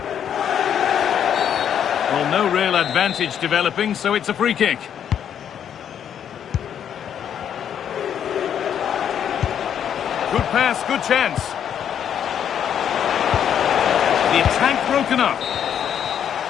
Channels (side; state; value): right; quieter; 9.0 dB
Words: Well, no real advantage developing, so it's a free kick. Good pass, good chance. The attack broken up.